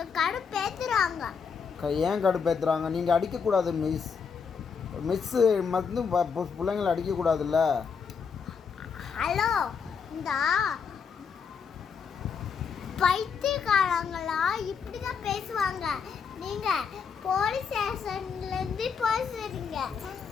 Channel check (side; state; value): right; quieter; 6.1 dB